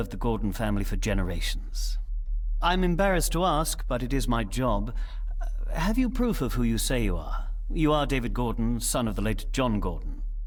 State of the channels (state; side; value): identical; both; correlation 1.00